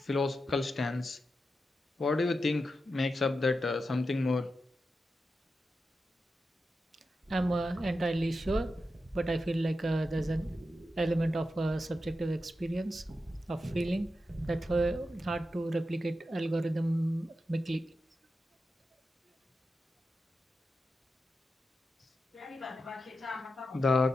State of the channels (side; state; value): both; normal; correlation 0.89